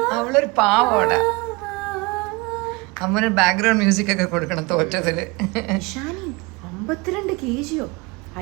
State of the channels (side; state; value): left; quieter; 25.6 dB